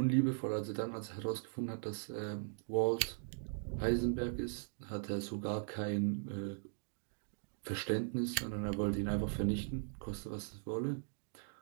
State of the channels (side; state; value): left; silent; digital silence